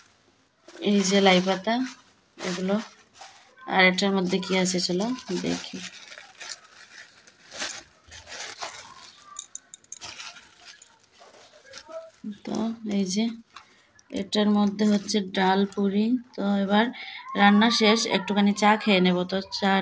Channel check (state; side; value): identical; both; correlation 1.00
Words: এই যে লাই পাতা এগুলো, আর এটার মধ্যে কি আছে চলো দেখি। তো এই যে এটার মধ্যে হচ্ছে ডাল পুরি। তো এবার রান্না শেষ, একটুখানি চা খেয়ে নেব, তো